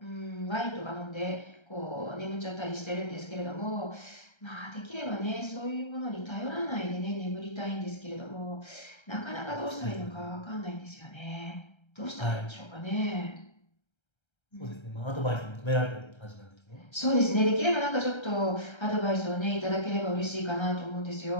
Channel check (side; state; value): right; late; 1.3 ms